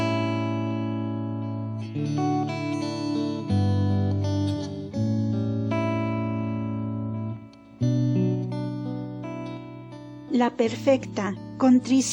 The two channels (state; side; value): identical; both; correlation 1.00